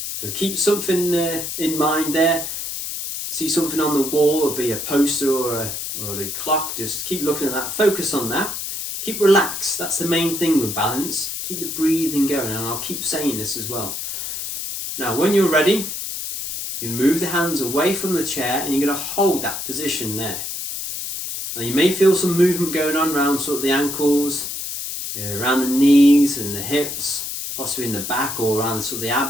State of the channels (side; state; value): left; noise; hiss, 5 dB below the sound